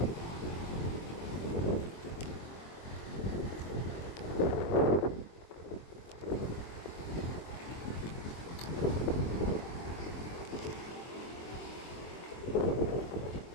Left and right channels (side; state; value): right; late; 23 ms